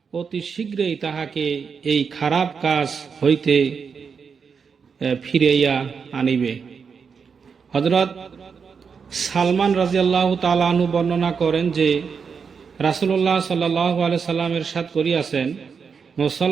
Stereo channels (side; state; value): left; quieter; 6.0 dB